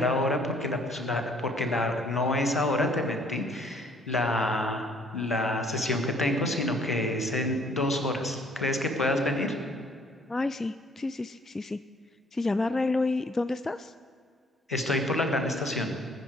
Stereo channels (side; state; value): both; normal; correlation 0.61